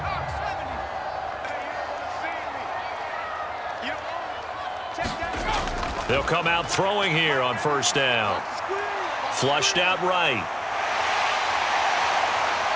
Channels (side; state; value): both; identical; correlation 1.00